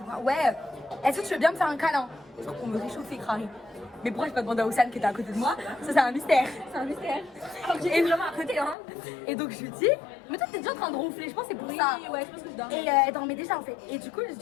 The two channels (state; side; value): drops out; right; at 8.8 s